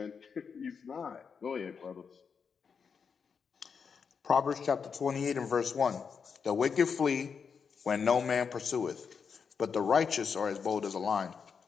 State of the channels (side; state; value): right; quieter; 6.1 dB